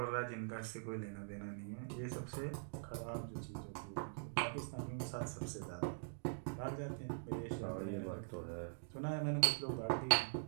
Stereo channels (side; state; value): left; silent; digital silence